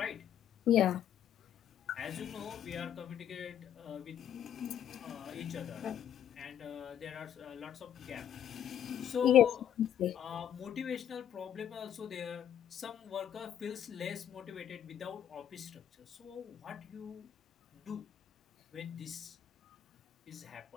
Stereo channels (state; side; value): quieter; right; 10.0 dB